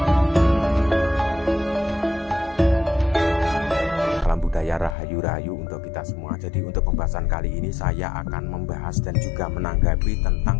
Rahayu untuk kita semua. Jadi untuk pembahasan kali ini saya akan membahas dan juga menanggapi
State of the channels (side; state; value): right; drops out; at 5.0 s